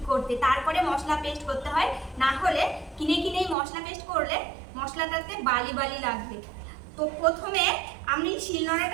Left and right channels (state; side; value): drops out; left; at 3.6 s